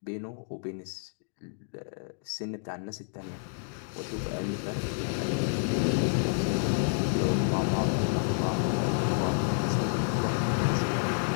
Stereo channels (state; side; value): silent; right; digital silence